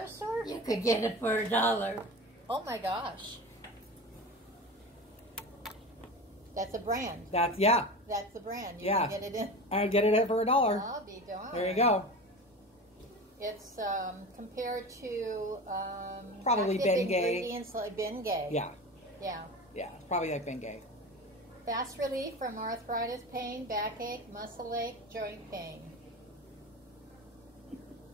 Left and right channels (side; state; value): both; normal; correlation 0.30